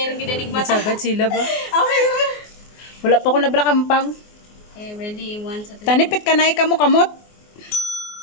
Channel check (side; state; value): right; late; 24 ms